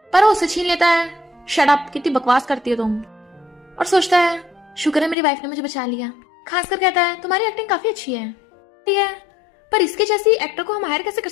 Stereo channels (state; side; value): drops out; right; at 5.2 s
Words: पर वो उसे छीन लेता है। शट अप, कितनी बकवास करती हो तुम। और सोचता है शुक्र है मेरी वाइफ ने मुझे बचा लिया। खासकर कहता है तुम्हारी एक्टिंग काफी अच्छी है, पर इसके जैसी एक्टर को हम हायर कैसे कर